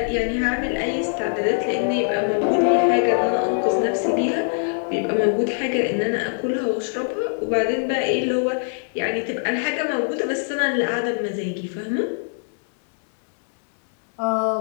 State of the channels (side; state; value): right; silent; 64 dB below the other